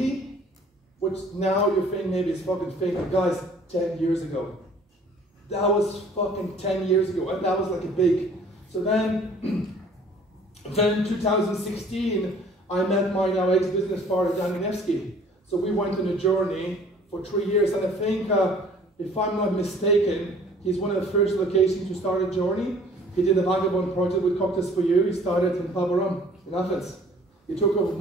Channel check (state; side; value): normal; both; correlation 0.53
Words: Which now you're thinking maybe it's fucking fake. But guys, 10 years ago. That was fucking 10 years ago. And that was like a big. So then, then 2016, I met my now ex-business partner, Danny Nevsky. So we went on a journey for 3 years, and I think, if I'm not mistaken, he's one of the first locations to start a journey. He did a vagabond project with Cocktails for You. He started in Pabarum, in Athens. He took off